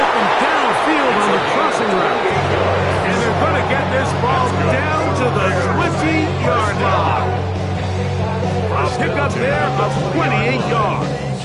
downfield on the crossing route. And they're going to get this ball down to the 20-yard line. A pickup there of 28 yards.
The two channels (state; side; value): identical; both; correlation 1.00